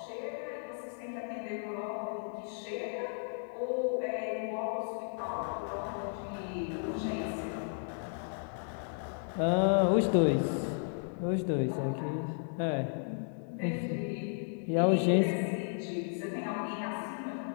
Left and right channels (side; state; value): right; silent; digital silence